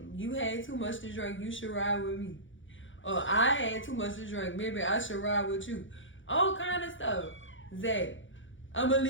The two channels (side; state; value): right; late; 0.56 ms